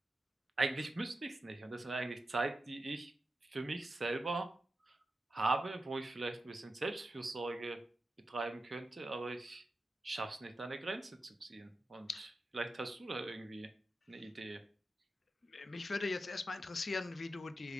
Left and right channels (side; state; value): both; normal; correlation 0.90